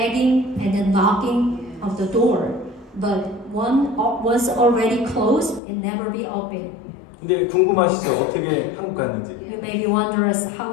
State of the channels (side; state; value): right; drops out; at 5.6 s